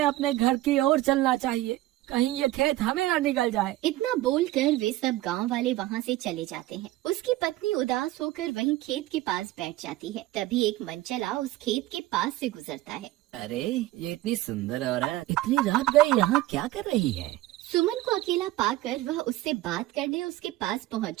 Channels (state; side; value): quieter; left; 16.5 dB